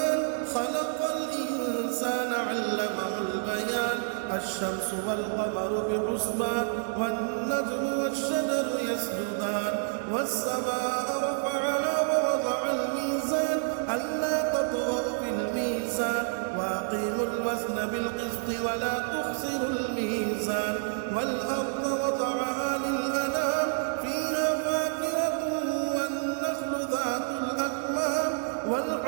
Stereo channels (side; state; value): left; silent; 59 dB below the other